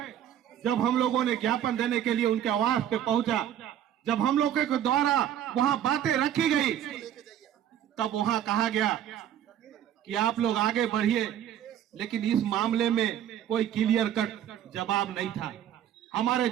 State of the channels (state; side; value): quieter; left; 10.5 dB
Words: जब हम लोगों ने ज्ञापन देने के लिए उनके आवास पे पहुंचा, जब हम लोगों के द्वारा वहां बातें रखी गई, तब वहां कहा गया कि आप लोग आगे बढ़िए, लेकिन इस मामले में कोई क्लियर कट जवाब नहीं था। हमारे